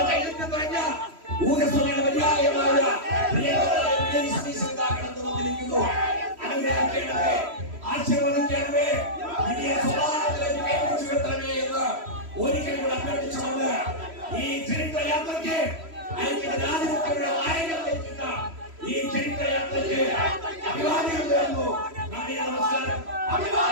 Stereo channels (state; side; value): late; left; 3.1 ms